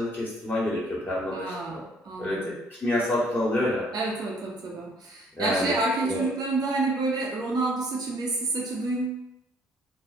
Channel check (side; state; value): both; normal; correlation 0.61